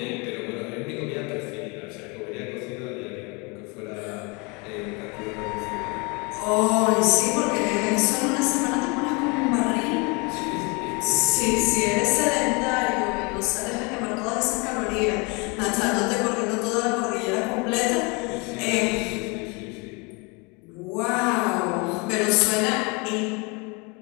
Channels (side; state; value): right; quieter; 29.5 dB